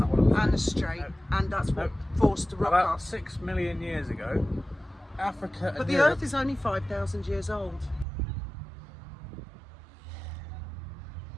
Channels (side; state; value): left; drops out; at 8.1 s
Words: what it was. and the strait, No. and that's what No. forced the rock About off. 6 million years ago, Africa But and the Europe... Earth is only 5,000 years old.